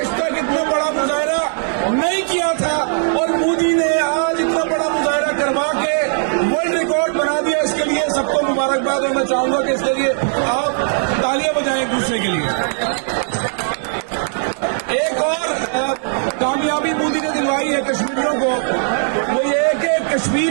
تک اتنا بڑا مظاہرہ نہیں کیا تھا اور مودی نے آج اتنا بڑا مظاہرہ کروا کے ورلڈ ریکارڈ بنا دیا. اس کے لیے سب کو مبارکباد اور میں چاہوں گا کہ اس کے لیے آپ تالیاں بجائیں ایک دوسرے کے لیے. ایک اور کامیابی مودی نے دلوائی ہے کشمیریوں کو, وہ یہ ہے کہ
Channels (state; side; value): silent; left; 67 dB below the other